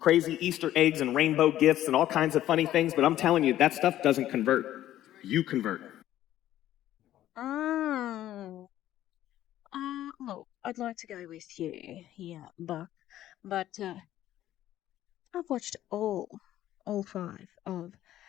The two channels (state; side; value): quieter; right; 13.1 dB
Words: Easter eggs and rainbow gifts and all kinds of funny things, but I'm telling you, that stuff doesn't convert. You convert. Look, I'd like to go with you here, Buck, but I've watched all 5 of